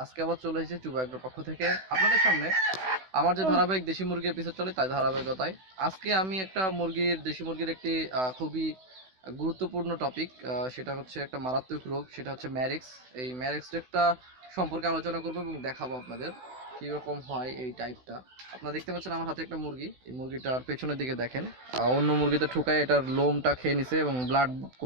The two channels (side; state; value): left; late; 16 ms